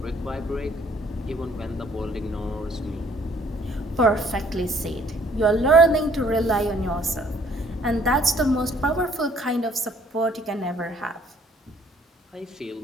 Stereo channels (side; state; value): both; normal; correlation 0.61